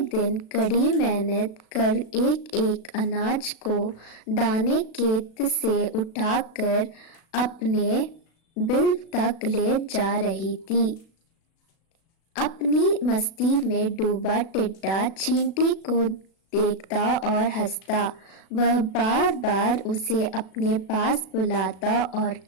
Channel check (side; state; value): right; late; 36 ms